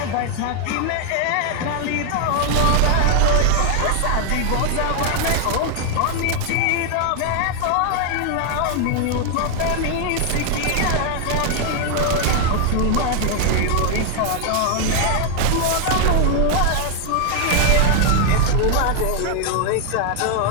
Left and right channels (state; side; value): different; both; correlation 0.00